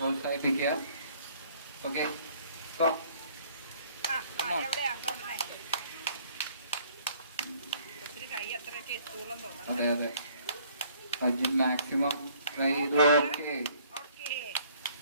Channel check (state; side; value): inverted; both; correlation -0.59